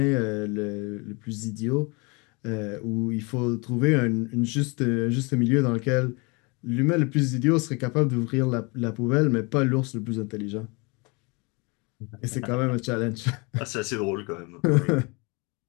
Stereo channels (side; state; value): right; quieter; 29.5 dB